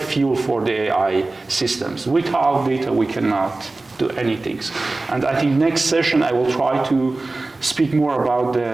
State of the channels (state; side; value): quieter; left; 3.2 dB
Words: for the AI systems. Without data, we cannot do anything. And I think next session I will try to speak more about